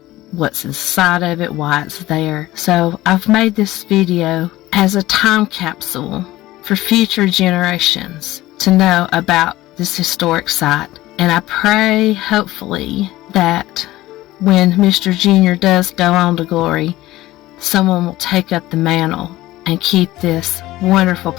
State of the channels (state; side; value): quieter; right; 16.8 dB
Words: what's inside of it, why it's there. So I've made this video as a time capsule for future generations to know about this historic site. And I pray, hopefully, that when Mr. Junior does go on to glory, someone will take up the mantle and keep this wonderful